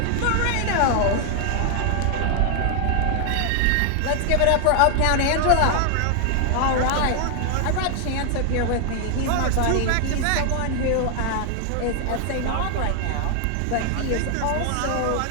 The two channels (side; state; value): both; different; correlation 0.00